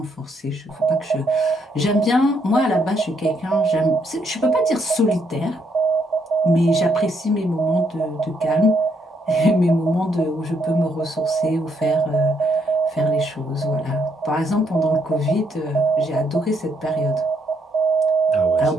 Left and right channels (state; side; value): normal; both; correlation 0.74